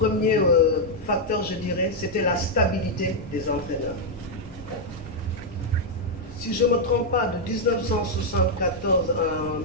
facteur, je dirais, c'était la stabilité des entraîneurs. Si je ne me trompe pas, de 1974 à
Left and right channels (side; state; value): both; normal; correlation -0.01